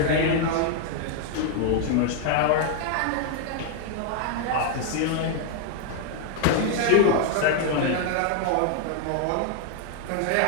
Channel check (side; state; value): both; different; correlation 0.00